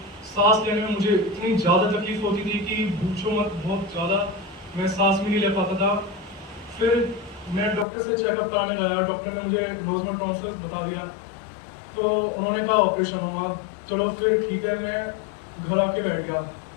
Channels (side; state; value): right; drops out; at 7.9 s